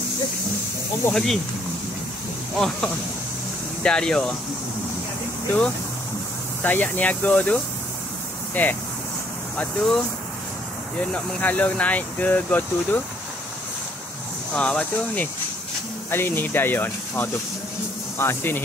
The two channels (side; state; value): both; normal; correlation 0.65